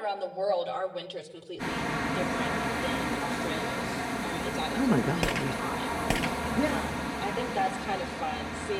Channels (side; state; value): both; identical; correlation 1.00